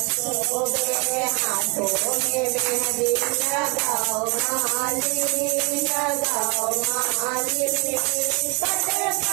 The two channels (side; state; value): left; quieter; 30.4 dB